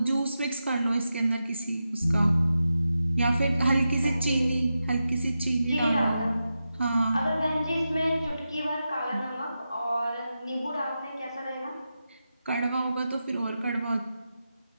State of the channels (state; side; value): inverted; both; correlation -0.90